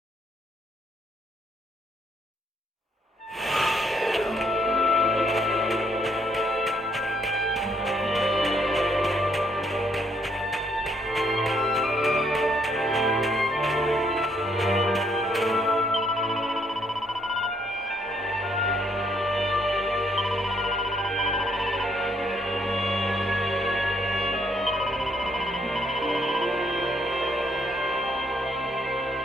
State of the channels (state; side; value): normal; both; correlation 0.70